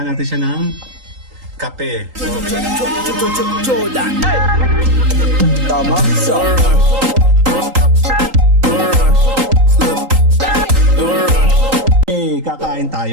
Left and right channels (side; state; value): left; late; 3.8 ms